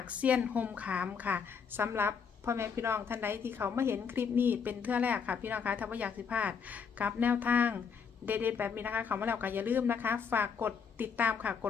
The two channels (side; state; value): right; quieter; 6.4 dB